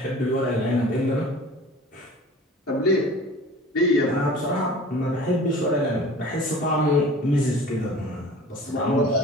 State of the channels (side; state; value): both; normal; correlation 0.42